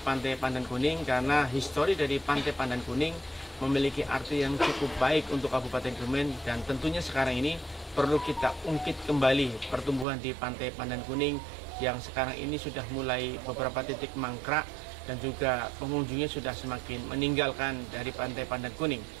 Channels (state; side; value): drops out; left; at 10.1 s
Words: Pandan Kuning karena histori dari Pantai Pandan Kuning memiliki arti yang cukup baik untuk Kabupaten Kebumen, dan tentunya sekarang ini perlu kita ungkit kembali pertumbuhan di Pantai Pandan Kuning yang sekarang ini sudah mulai beberapa titik mangkrak dan juga pengunjungnya sudah semakin meninggalkan dari Pantai Pandan Kuning.